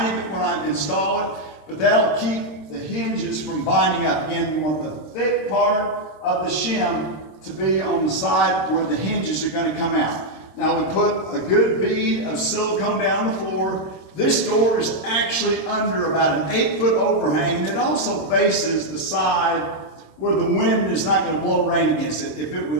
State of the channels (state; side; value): late; right; 26 ms